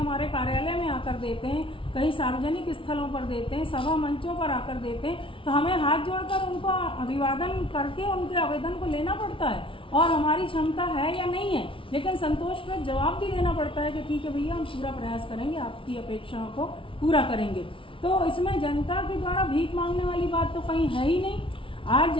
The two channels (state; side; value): late; right; 0.25 ms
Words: कार्यालय में आकर देते हैं, कहीं सार्वजनिक स्थलों पर देते हैं, सभा मंचों पर आकर देते हैं, तो हमें हाथ जोड़कर उनको अभिवादन करके उनके आवेदन को लेना पड़ता है और हमारी क्षमता है या नहीं है, लेकिन संतोषप्रद जवाब भी देना पड़ता है कि ठीक है भैया, हम पूरा प्रयास करेंगे, आपकी अपेक्षाओं को पूरा करेंगे। तो इसमें जनता के द्वारा भीख मांगने वाली बात तो कहीं है ही नहीं। आज